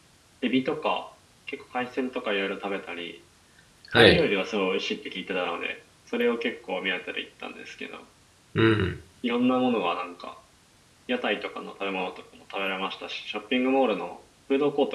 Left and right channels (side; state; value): both; identical; correlation 1.00